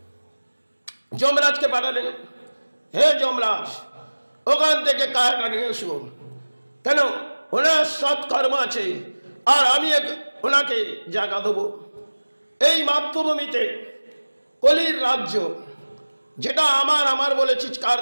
যমরাজকে পাঠালেন, হে যমরাজ, ওখান থেকে কায়াটা নিয়ে এসো। কেন? ওনার সৎ কর্ম আছে, আর আমি ওনাকে জায়গা দেবো। এই মাতৃভূমিতে কলির রাজ্য, যেটা আমার বলে চিৎকার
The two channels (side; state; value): both; inverted; correlation -1.00